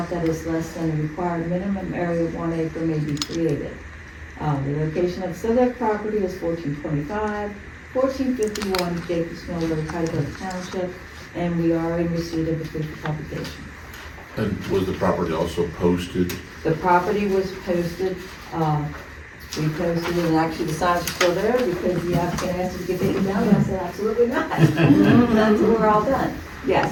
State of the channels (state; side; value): identical; both; correlation 1.00